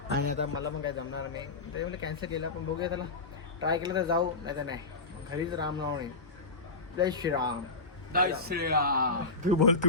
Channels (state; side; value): quieter; right; 3.6 dB